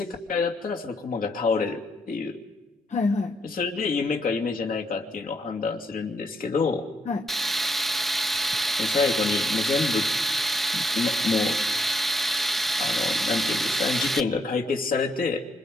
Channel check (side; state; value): both; normal; correlation 0.75